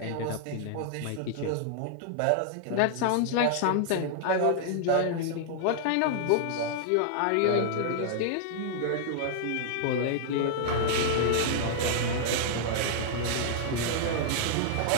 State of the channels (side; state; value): both; different; correlation -0.01